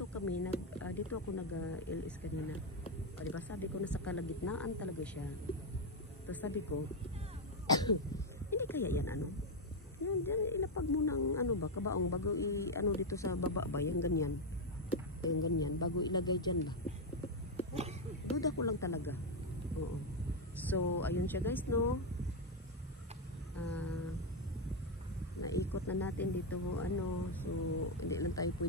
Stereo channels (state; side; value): normal; both; correlation 0.04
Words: ako nag-LS kanina. O, diba? Sabi ko nasa kalagitnaan talaga siya. Tapos sabi ko, hindi kaya yan ano? Yan, ilapag mo ng ano ba, kabaong bago ano dito sa baba ba, yung ganyan. Yung ganyan, bago ilagay dyan ba. Duda ko lang talaga. Oo. So, ayun siya guys, no? Naikot na natin dito, ano. So, hindi lang tayo